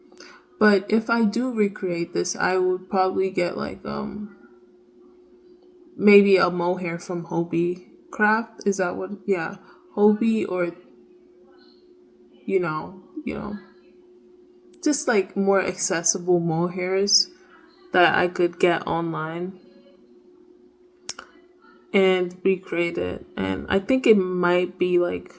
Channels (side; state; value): both; identical; correlation 1.00